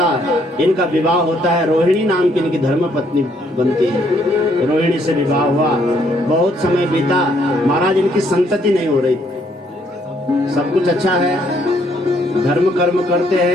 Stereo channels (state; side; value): normal; both; correlation 0.69